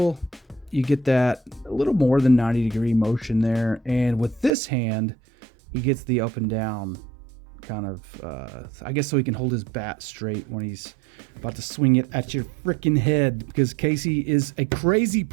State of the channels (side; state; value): left; drops out; at 4.5 s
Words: You get that a little more than 90 degree motion there. And with this hand, he gets the up and down kind of, I guess so he can hold his bat straight when he's about to swing it at your freaking head, because Casey is a crazy